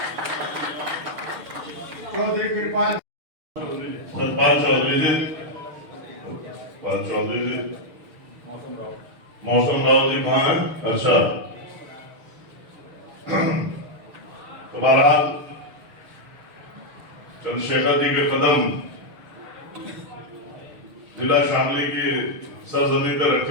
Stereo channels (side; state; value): left; late; 6.6 ms